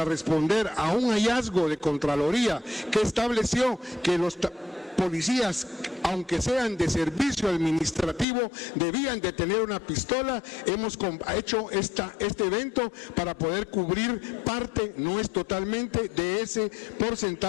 responder a un hallazgo de Contraloría que estableció que los policías, aunque sean de servicio administrativo, debían de tener una pistola, hemos hecho este evento para poder cubrir parte, no es totalmente, de ese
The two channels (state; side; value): drops out; right; at 8.2 s